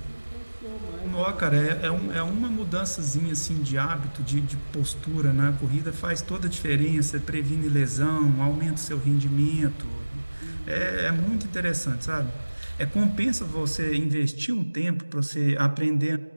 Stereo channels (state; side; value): inverted; both; correlation -1.00